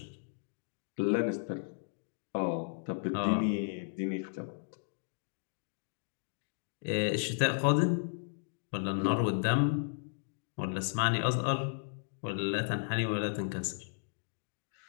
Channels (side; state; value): right; silent; digital silence